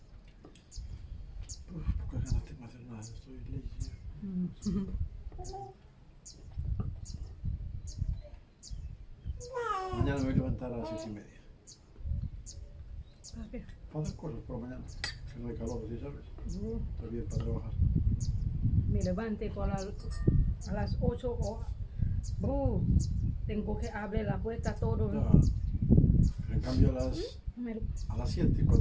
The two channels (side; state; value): both; identical; correlation 1.00